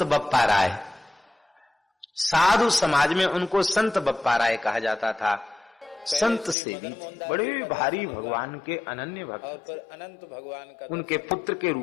बप्पा राय। साधु समाज में उनको संत बप्पा राय कहा जाता था। संत सेवी बड़े भारी भगवान के अनन्य भक्त, अनंत भगवान का उनके पुत्र के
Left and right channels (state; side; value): drops out; right; at 6.6 s